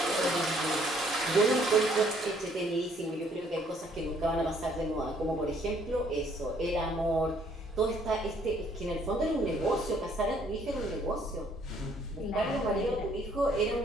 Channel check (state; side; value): normal; both; correlation 0.64